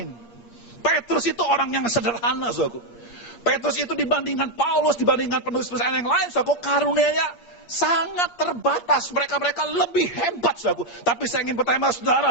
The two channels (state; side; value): late; right; 8.5 ms